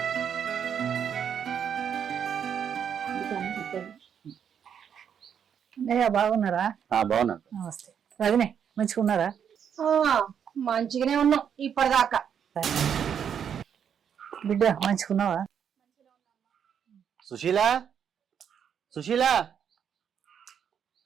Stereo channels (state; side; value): quieter; left; 8.1 dB